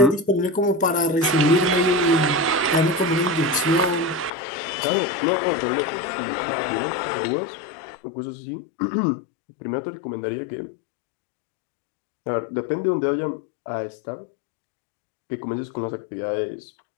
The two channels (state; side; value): drops out; right; at 4.3 s